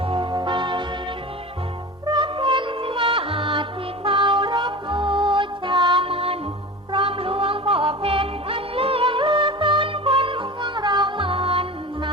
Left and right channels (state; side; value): normal; both; correlation 0.32